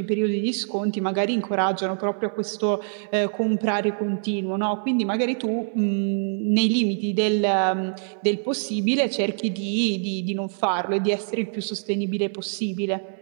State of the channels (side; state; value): left; silent; 59 dB below the other